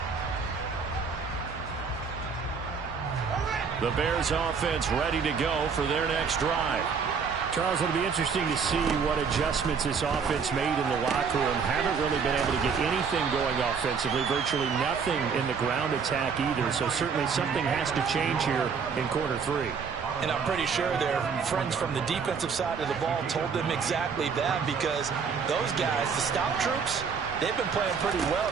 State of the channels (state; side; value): quieter; left; 5.9 dB